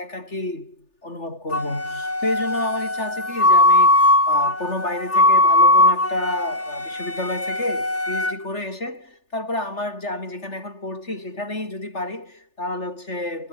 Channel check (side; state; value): right; late; 3.4 ms